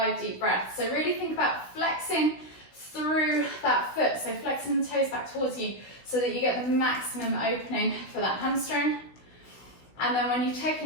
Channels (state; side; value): late; right; 16 ms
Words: deep breaths. So really think about flexing through that foot, so flexing the toes back towards you so that you get the maximum opening for that hamstring. And then when you've taken